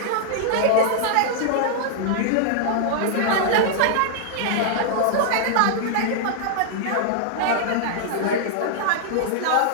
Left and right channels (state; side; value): different; both; correlation -0.01